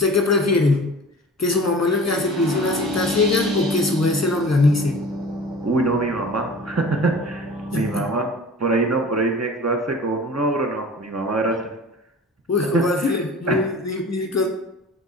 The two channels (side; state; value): both; normal; correlation 0.41